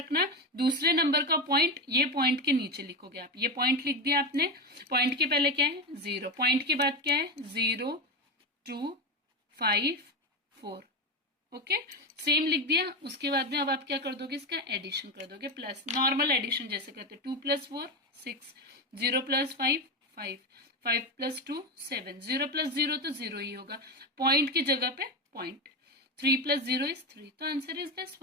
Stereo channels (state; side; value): normal; both; correlation 0.16